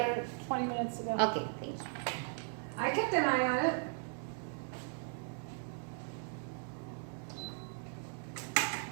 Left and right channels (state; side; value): silent; left; 53 dB below the other